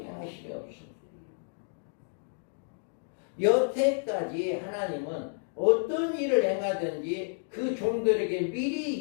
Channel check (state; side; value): silent; right; digital silence